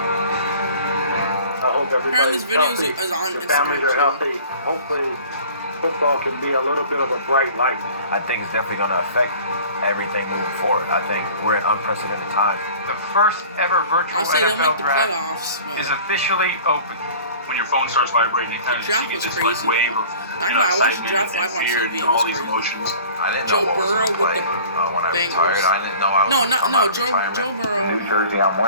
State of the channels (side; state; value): both; inverted; correlation -0.46